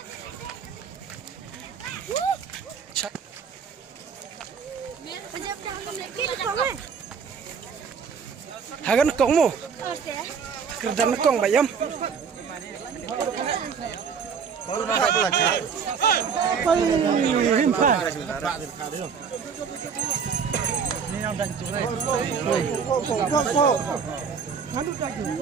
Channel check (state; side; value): quieter; left; 6.4 dB